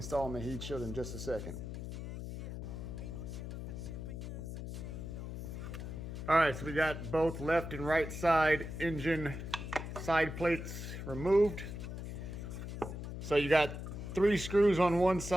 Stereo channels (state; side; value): noise; left; hum, 7 dB below the sound